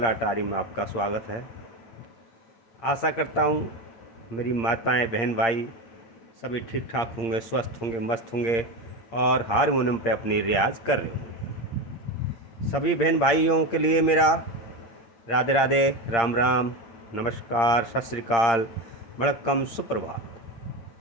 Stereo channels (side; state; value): right; late; 8.7 ms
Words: में आपका स्वागत है। आशा करता हूँ मेरी माताएं, बहन, भाई सभी ठीक ठाक होंगे, स्वस्थ होंगे, मस्त होंगे और हारमोनियम पे अपनी रियाज कर रहे होंगे। सभी बहन भाइयों के लिए मेरा राधे राधे, राम राम, नमस्कार, सत श्री अकाल, वणक्कम, सुप्रभात।